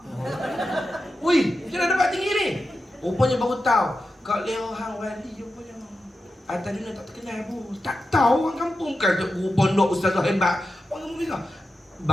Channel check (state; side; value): normal; both; correlation 0.90